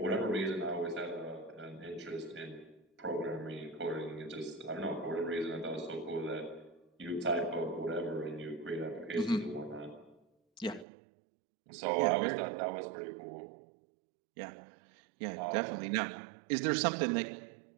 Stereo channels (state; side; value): drops out; left; at 10.9 s